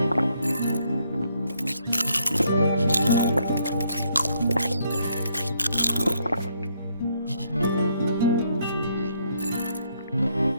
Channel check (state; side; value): inverted; both; correlation -0.72